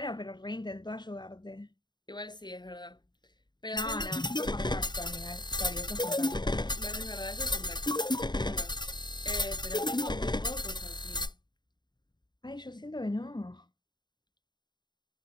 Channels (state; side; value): late; right; 0.21 ms